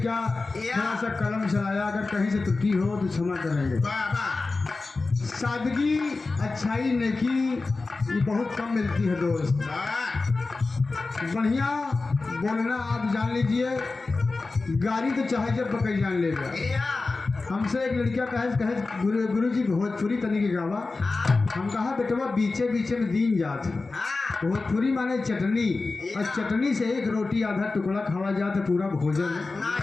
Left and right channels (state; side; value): quieter; right; 3.7 dB